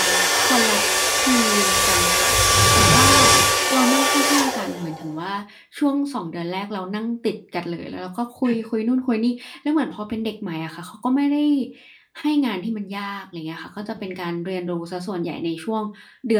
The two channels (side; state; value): both; identical; correlation 1.00